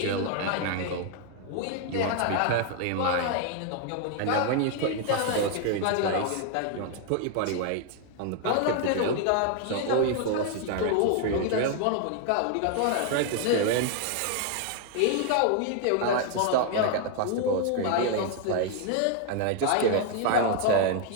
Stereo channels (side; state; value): both; different; correlation 0.00